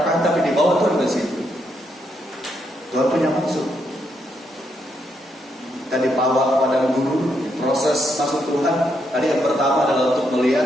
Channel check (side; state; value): both; normal; correlation 0.78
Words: tapi dibawa Tuhan ke situ. Tuhan punya maksud. Kita dibawa kepada guru, proses masuk Tuhan. Tadi yang pertama adalah untuk